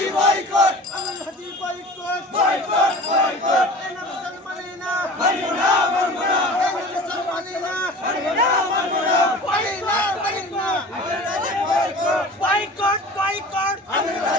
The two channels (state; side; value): normal; both; correlation 0.40